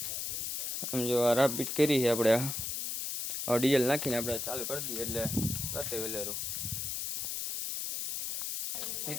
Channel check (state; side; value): noise; left; hiss, 3 dB below the sound